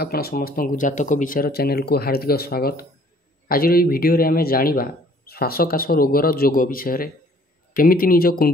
समस्त जातक विचार चैनल को हार्दिक स्वागत। आज ये वीडियो रे आमे जानिबा श्वासकाश रोगर जोग विषय केमिति निज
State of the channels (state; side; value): normal; both; correlation 0.57